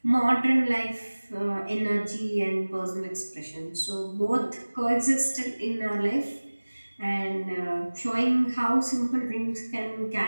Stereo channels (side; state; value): both; inverted; correlation -1.00